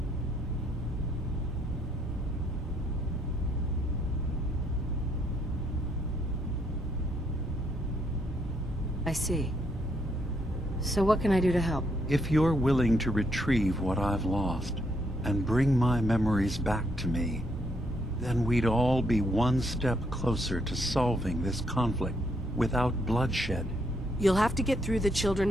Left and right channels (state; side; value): normal; both; correlation 0.73